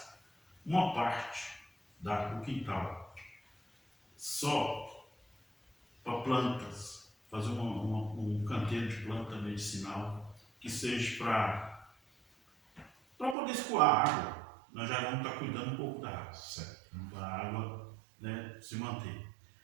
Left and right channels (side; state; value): left; drops out; at 13.4 s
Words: uma parte do quintal só para plantas, fazer um canteiro de planta medicinal que seja para poder escoar a água. Nós já vamos estar cuidando um pouco da água, para a água, né, se manter.